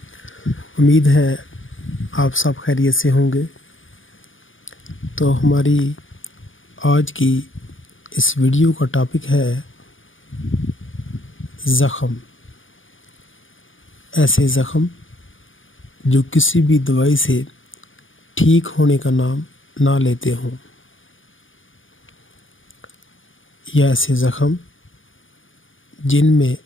امید ہے آپ سب خیریت سے ہوں گے۔ تو ہماری آج کی اس ویڈیو کا ٹاپک ہے زخم۔ ایسے زخم جو کسی بھی دوائی سے ٹھیک ہونے کا نام نہ لیتے ہوں، یا ایسے زخم جن میں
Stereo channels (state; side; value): late; right; 0.57 ms